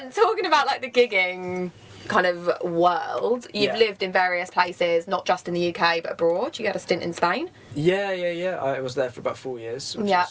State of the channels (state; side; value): identical; both; correlation 1.00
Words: talking about like the gigging kind of world, you've lived in various places, not just in the UK but abroad. You had a stint in Spain. Yeah. I was there for about 4 years,